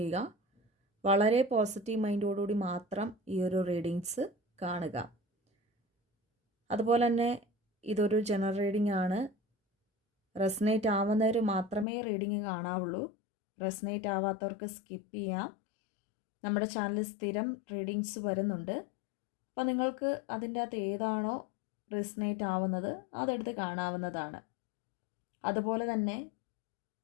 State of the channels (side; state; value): right; drops out; at 11.9 s